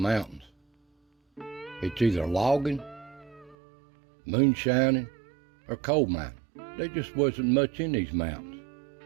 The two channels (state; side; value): drops out; left; at 3.6 s